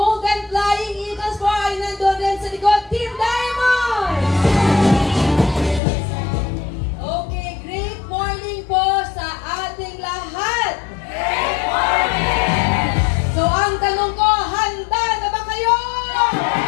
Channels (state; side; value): drops out; right; at 5.8 s